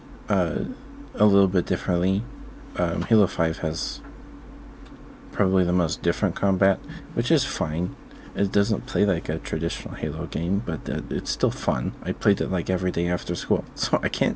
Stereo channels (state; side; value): identical; both; correlation 1.00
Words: uh, a little bit differently. Halo 5 has probably the most different combat, which is fine. It doesn't play like a traditional Halo game, but it's still fun. I played it like every day after school, so I